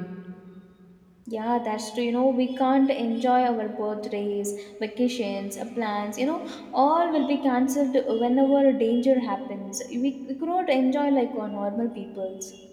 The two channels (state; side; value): identical; both; correlation 1.00